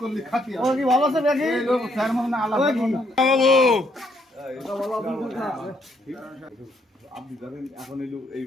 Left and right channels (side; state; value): both; normal; correlation 0.71